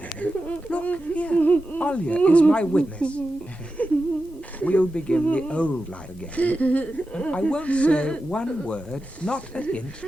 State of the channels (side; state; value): both; normal; correlation 0.91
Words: Look here, Olya is my witness. We'll begin the old life again. I won't say one word, not a hint.